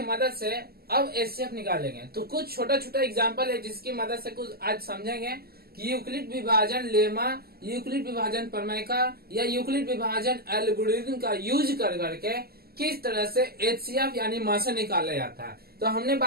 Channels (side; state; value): left; late; 0.45 ms